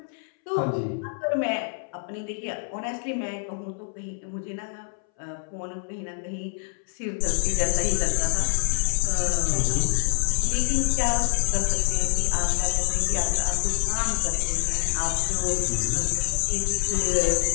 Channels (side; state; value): right; silent; 62 dB below the other